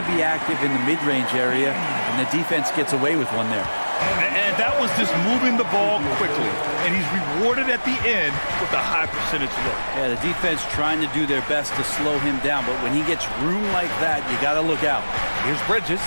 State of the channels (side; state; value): both; inverted; correlation -1.00